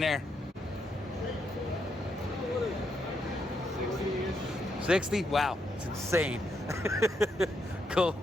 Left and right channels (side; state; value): both; normal; correlation 0.79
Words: 60? Wow, it's insane. Cool.